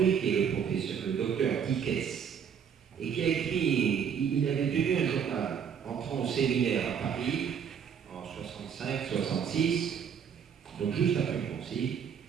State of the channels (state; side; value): quieter; left; 7.5 dB